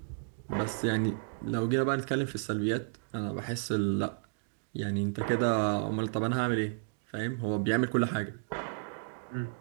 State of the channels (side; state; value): left; silent; digital silence